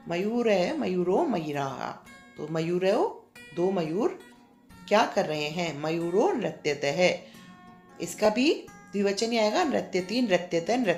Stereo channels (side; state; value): both; identical; correlation 1.00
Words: मयूर है, मयूरो मयूराः, तो मयूरो दो मयूर क्या कर रहे हैं, मयूरो नृत्यत है। इसका भी द्विवचन ही आएगा, नृत्यति नृत्यत